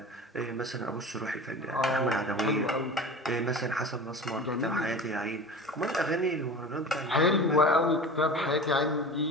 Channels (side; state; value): both; normal; correlation 0.34